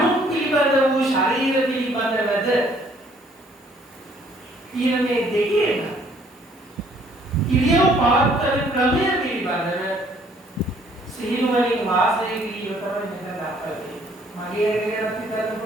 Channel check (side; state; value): both; normal; correlation 0.62